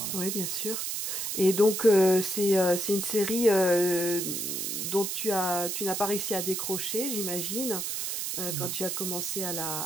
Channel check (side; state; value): right; noise; hiss, 2 dB below the sound